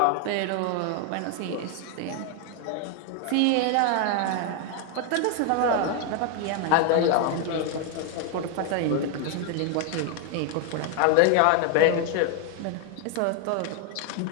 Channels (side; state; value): both; different; correlation 0.01